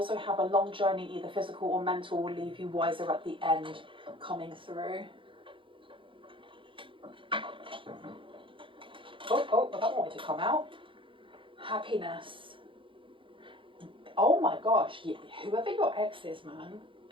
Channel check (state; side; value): late; left; 0.25 ms